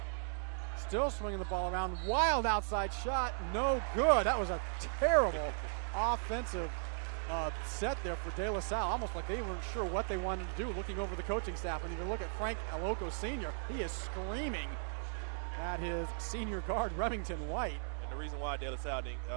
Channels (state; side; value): silent; left; digital silence